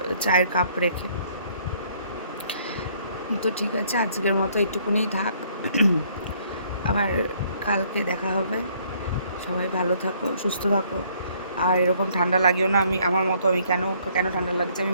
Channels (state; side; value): inverted; both; correlation -0.63